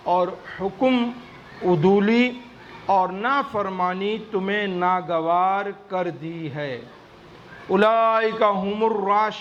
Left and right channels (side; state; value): both; identical; correlation 1.00